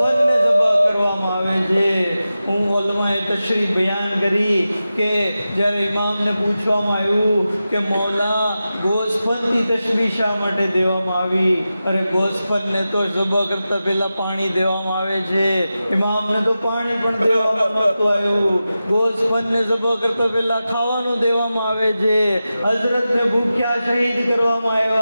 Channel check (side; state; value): both; inverted; correlation -0.93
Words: સબહ કરવામાં આવે છે. હું ઉલમાએ તશરીફ બયાન કરી કે જ્યારે ઇમામને પૂછવામાં આવ્યું કે મૌલા ગોસ્ફનથી તશબીહ શા માટે દેવામાં આવી? અરે ગોસ્ફનને તો સબહ કરતા પહેલા પાણી દેવામાં આવે છે, ઇમામને તો પાણી પણ દેવામાં નહોતું આવ્યું. ગોસ્ફનને સબહ કરતા પહેલા ખાવાનું દેવામાં આવે છે. હઝરતને ભૂખ્યા શહીદ કરવામાં